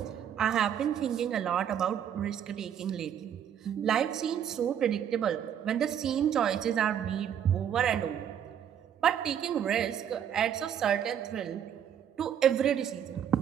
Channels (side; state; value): left; quieter; 9.2 dB